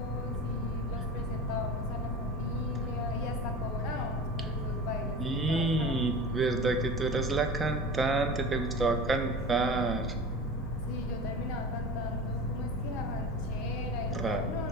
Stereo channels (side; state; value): both; normal; correlation 0.33